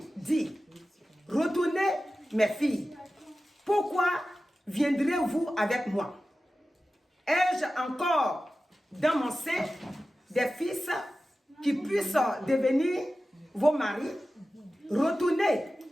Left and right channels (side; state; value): both; normal; correlation 0.94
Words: dit, retournez mes filles, pourquoi viendrez-vous avec moi? Ai-je encore dans mon sein des fils qui puissent devenir vos maris? Retournez,